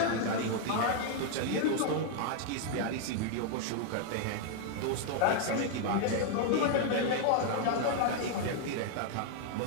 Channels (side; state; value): both; different; correlation 0.00